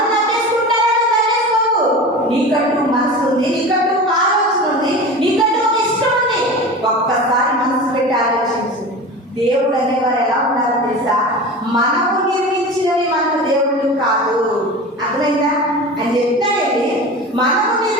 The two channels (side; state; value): both; normal; correlation 0.32